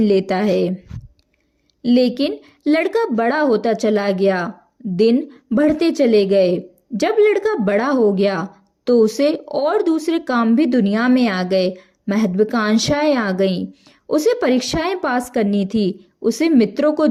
लेता है। लेकिन लड़का बड़ा होता चला गया, दिन बढ़ते चले गए। जब लड़का बड़ा हो गया तो उसे और दूसरे काम भी दुनिया में आ गए। महत्वाकांक्षाएं आ गईं। उसे परीक्षाएं पास करनी थी, उसे मित्रों को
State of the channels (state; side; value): identical; both; correlation 1.00